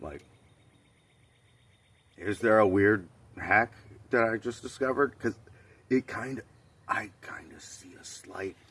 like, is there a weird hack that I just discovered? Because I kind of see a slight,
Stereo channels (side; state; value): both; identical; correlation 1.00